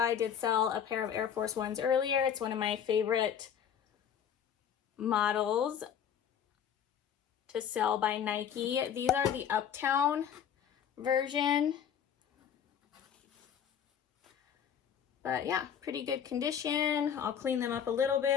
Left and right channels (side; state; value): right; quieter; 8.5 dB